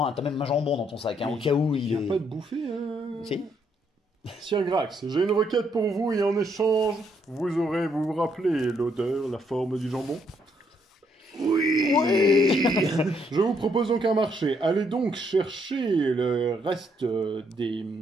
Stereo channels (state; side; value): normal; both; correlation 0.72